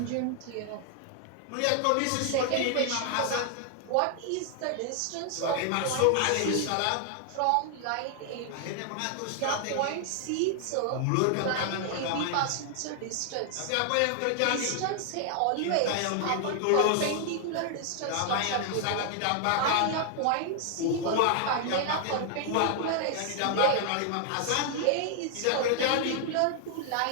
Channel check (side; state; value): both; different; correlation 0.00